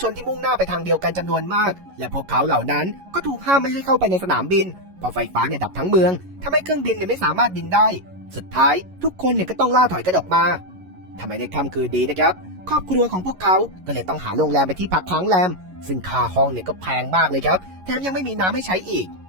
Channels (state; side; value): late; left; 11 ms